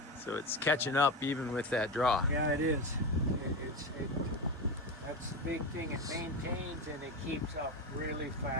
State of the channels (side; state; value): both; normal; correlation 0.20